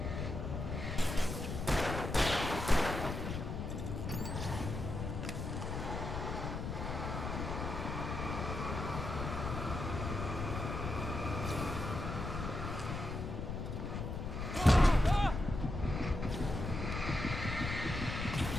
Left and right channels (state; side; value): noise; left; rumble, 4 dB below the sound